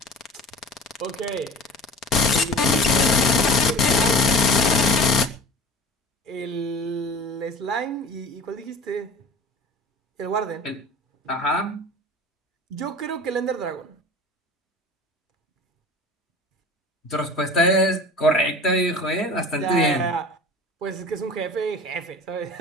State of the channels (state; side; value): normal; both; correlation 0.40